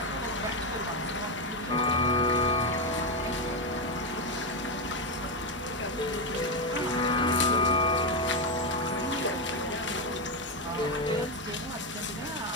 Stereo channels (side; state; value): both; normal; correlation 0.08